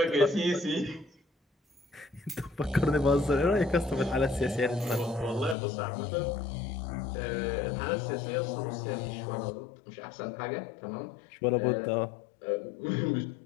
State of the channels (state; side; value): drops out; right; at 5.6 s